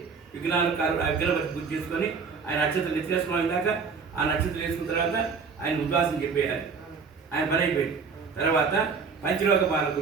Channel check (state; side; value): quieter; left; 5.4 dB